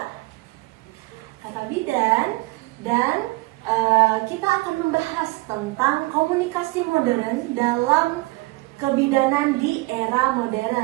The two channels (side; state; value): left; quieter; 22.7 dB